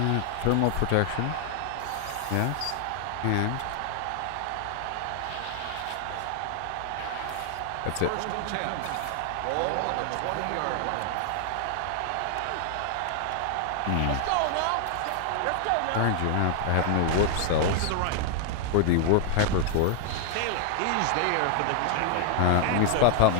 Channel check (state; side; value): different; both; correlation 0.00